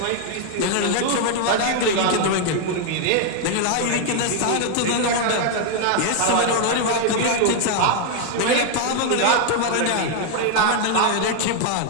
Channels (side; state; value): both; different; correlation 0.00